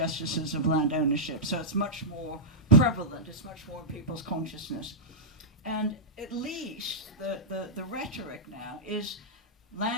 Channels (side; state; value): both; normal; correlation -0.11